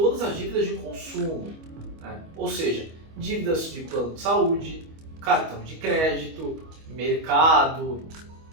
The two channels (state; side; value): late; left; 25 ms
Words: as dívidas de consumo, né? Ou seja, dívidas de plano de saúde, cartão de crédito, mercado,